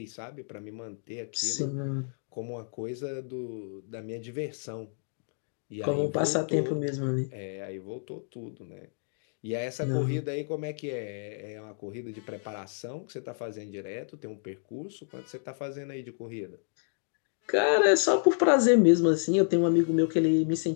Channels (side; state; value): right; silent; digital silence